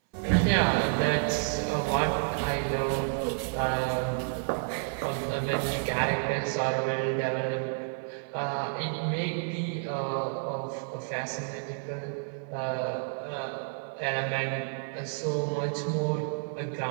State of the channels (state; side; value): silent; left; 58 dB below the other